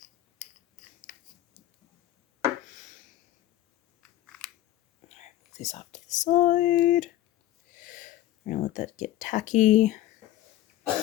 These off to the side. We're gonna let that get tacky.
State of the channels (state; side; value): quieter; right; 14.3 dB